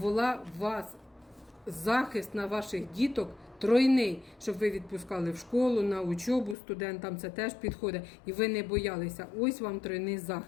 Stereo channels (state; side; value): drops out; right; at 6.6 s